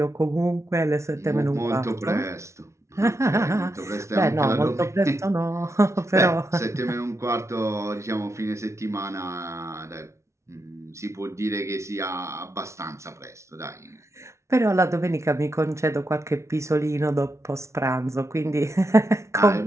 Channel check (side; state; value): left; late; 0.13 ms